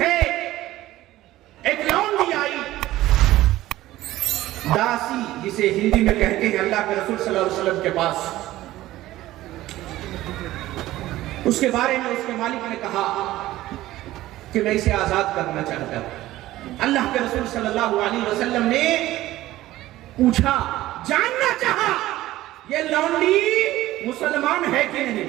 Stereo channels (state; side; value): quieter; left; 15.8 dB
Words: ہے۔ ایک لونڈی آئی، داسی جسے ہندی میں کہتے ہیں، اللہ کے رسول صلی اللہ علیہ وسلم کے پاس، اس کے بارے میں اس کے مالک نے کہا کہ میں اسے آزاد کرنا چاہتا ہوں۔ اللہ کے رسول صلی اللہ علیہ وسلم نے پوچھا، جاننا چاہا یہ لونڈی مسلمان ہے کہ